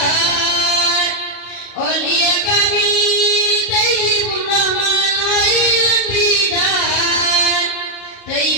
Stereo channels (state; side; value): late; right; 34 ms